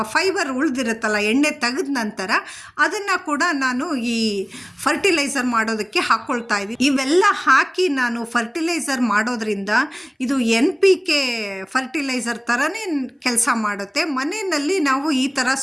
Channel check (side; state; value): both; identical; correlation 1.00